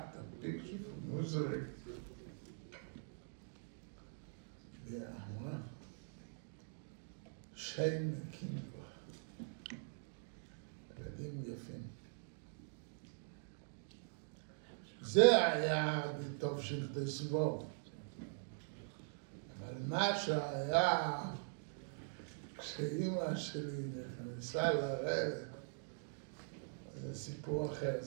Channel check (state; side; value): silent; left; digital silence